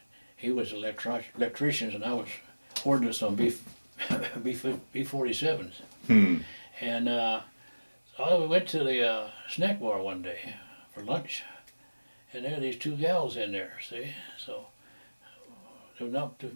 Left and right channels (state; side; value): inverted; both; correlation -1.00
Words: He was an electrician, and I was ordnance on B-47s. Hmm. And we went to the snack bar one day for lunch, and there were these 2 gals in there, see? So there were not too